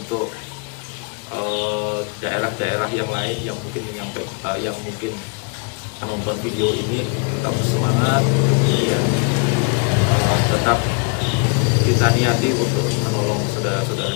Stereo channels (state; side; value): quieter; right; 36.1 dB